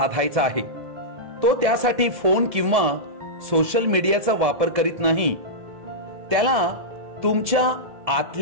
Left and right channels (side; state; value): left; late; 1.7 ms